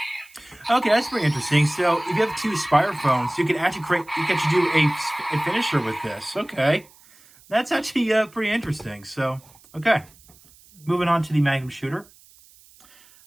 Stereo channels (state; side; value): noise; right; hiss, 27 dB below the sound